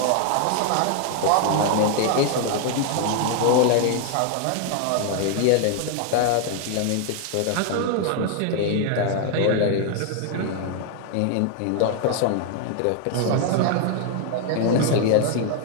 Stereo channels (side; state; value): both; different; correlation 0.00